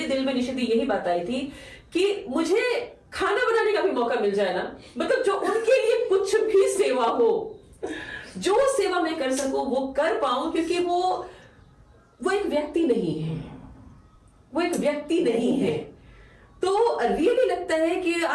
दिल में निशिदी यही बात आई थी कि मुझे खाना बनाने का भी मौका मिल जाए ना, मतलब जो उनके लिए कुछ भी सेवा हो, जो सेवा मैं कर सकूं वो कर पाऊं, क्योंकि वो एक व्यक्ति नहीं है, वो एक व्यक्ति नहीं है। तो रियली लगता है कि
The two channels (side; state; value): both; identical; correlation 1.00